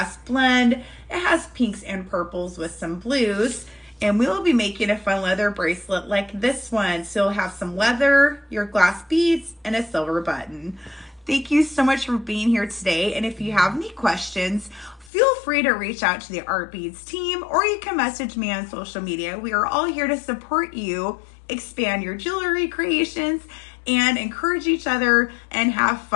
blend. It has pinks and purples with some blues. And we will be making a fun leather bracelet like this one. So you'll have some leather, your glass beads, and a silver button. Thank you so much for being here today. And if you have any questions, feel free to reach out to the Art Beads team, or you can message me on social media. We are all here to support you, expand your jewelry creations, and encourage each other and have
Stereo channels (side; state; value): right; drops out; at 15.1 s